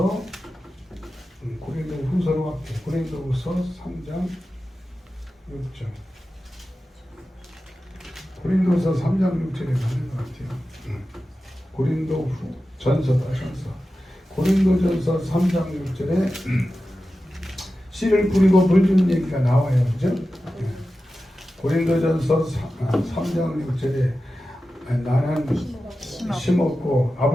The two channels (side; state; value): both; normal; correlation 0.93